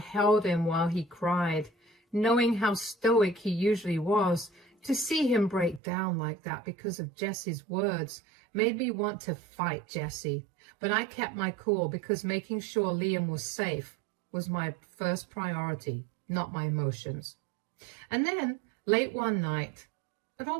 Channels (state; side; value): drops out; left; at 5.8 s